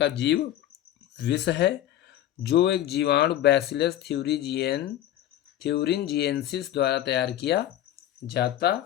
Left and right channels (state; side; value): quieter; right; 12.4 dB